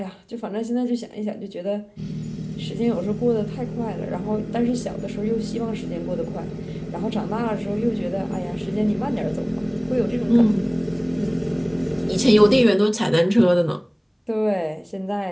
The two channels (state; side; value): identical; both; correlation 1.00